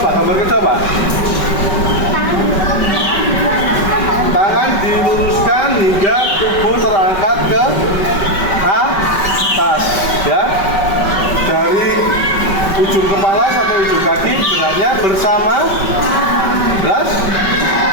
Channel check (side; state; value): right; late; 5.2 ms